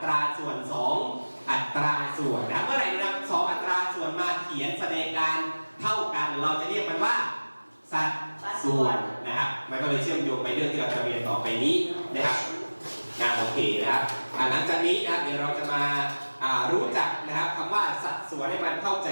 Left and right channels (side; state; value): both; inverted; correlation -1.00